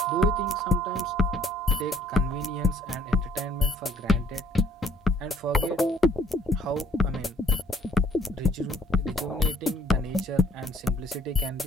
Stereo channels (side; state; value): both; normal; correlation 0.61